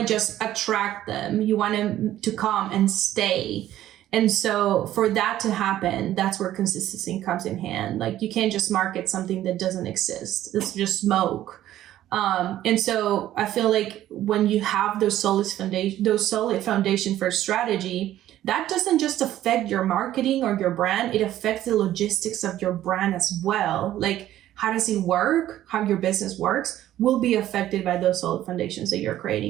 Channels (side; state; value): left; quieter; 13.1 dB